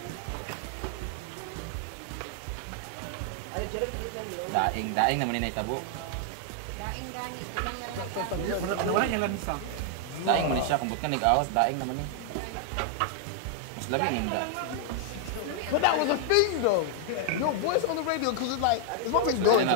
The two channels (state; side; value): different; both; correlation 0.00